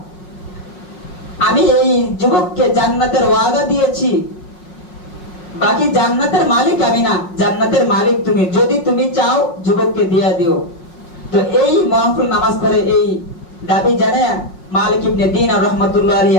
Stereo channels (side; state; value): right; late; 5.5 ms